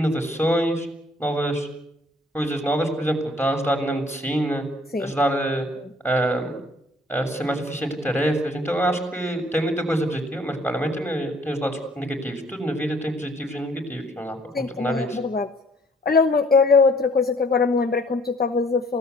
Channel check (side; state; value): both; normal; correlation 0.60